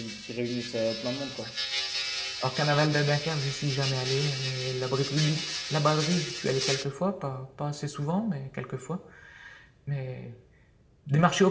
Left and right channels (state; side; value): identical; both; correlation 1.00